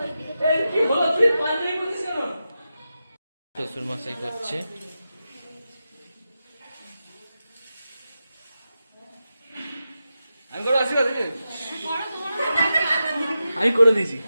শ্বশুর মশাই করছে। আমি করে দিয়েছি।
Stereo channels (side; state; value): both; inverted; correlation -0.90